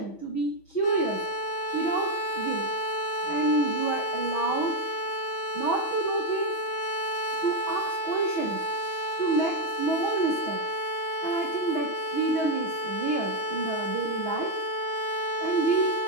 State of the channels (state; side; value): late; right; 6.1 ms